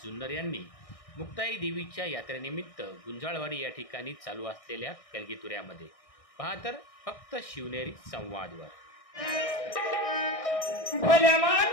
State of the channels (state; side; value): late; right; 1.6 ms